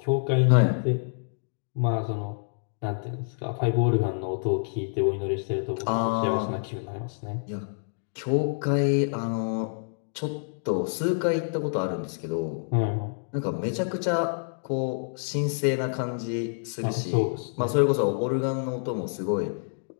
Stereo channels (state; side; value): silent; right; digital silence